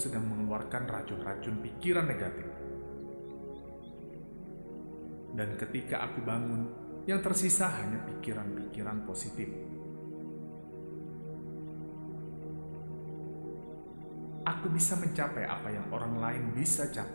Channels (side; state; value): both; inverted; correlation -1.00